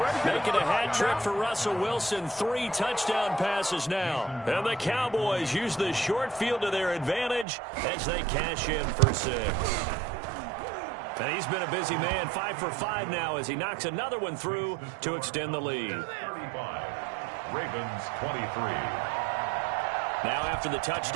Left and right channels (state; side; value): drops out; left; at 7.5 s